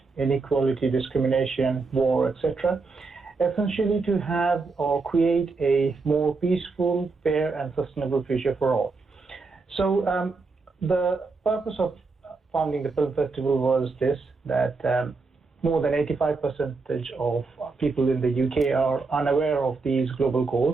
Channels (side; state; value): left; quieter; 4.1 dB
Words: inequality, discrimination, war, etc., essentially to have or create a more peaceful, fair and sustainable future for all. So the purpose of founding the film festival was this, that more than 85% of people in the UK are unaware of these global